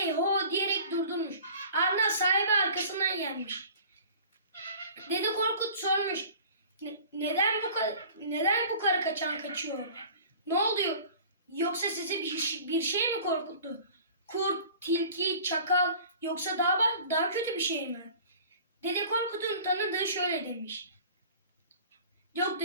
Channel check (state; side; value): inverted; both; correlation -0.45